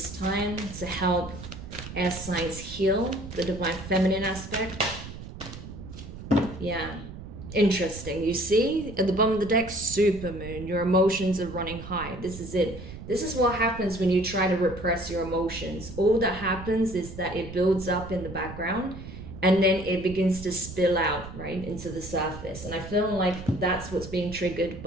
time to help air signs heal the divine feminine aspect? Yeah. Interesting. You see at the bottom of the deck, super moon. Your emotions are running high. This is it. This is what happens when you try to repress your emotions. All that happens is that it builds up in the background and then it begins to spill out, right, into the surface. And I feel like that's what's being triggered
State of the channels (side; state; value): right; noise; rumble, 12 dB below the sound